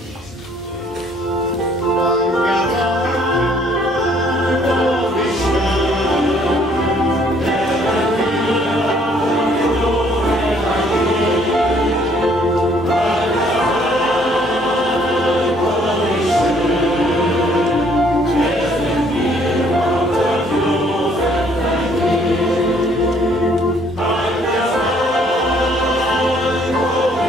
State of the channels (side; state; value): both; normal; correlation 0.62